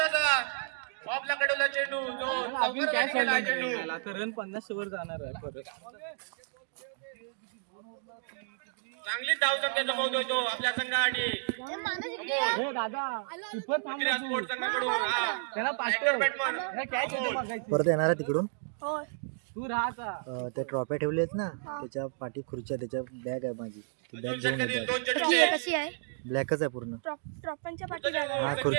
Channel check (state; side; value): silent; left; digital silence